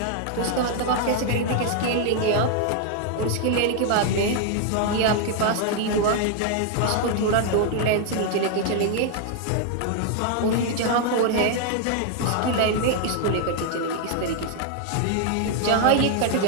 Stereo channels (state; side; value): different; both; correlation 0.00